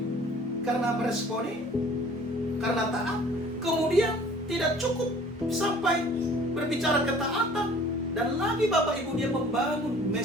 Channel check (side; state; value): both; normal; correlation 0.51